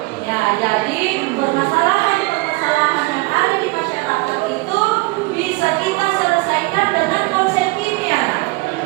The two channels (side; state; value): left; quieter; 23.8 dB